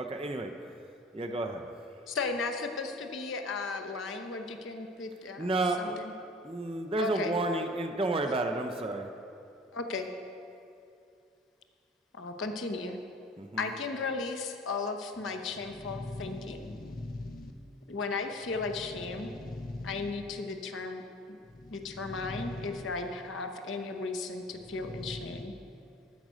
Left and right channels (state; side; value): normal; both; correlation 0.44